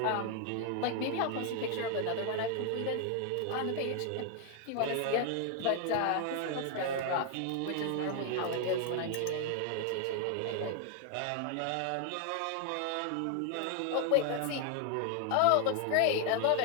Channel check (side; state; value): both; different; correlation 0.00